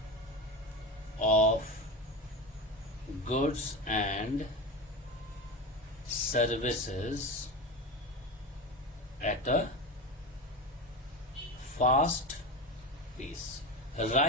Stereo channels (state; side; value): normal; both; correlation 0.23